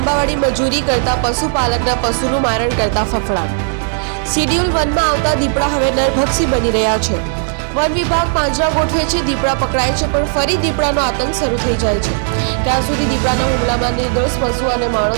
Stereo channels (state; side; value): silent; left; digital silence